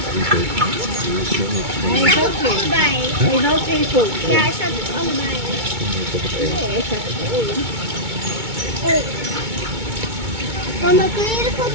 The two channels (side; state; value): left; late; 2.2 ms